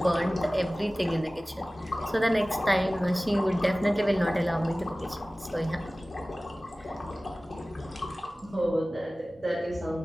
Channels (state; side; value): normal; both; correlation 0.98